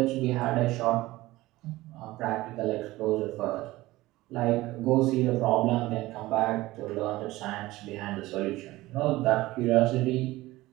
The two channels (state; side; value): quieter; left; 18.3 dB